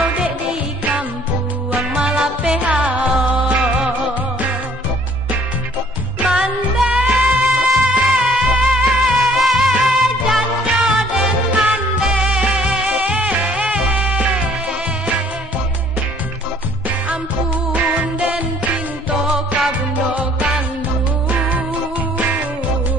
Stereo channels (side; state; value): both; normal; correlation 0.58